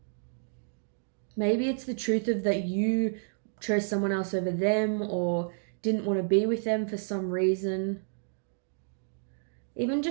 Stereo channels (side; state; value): left; silent; digital silence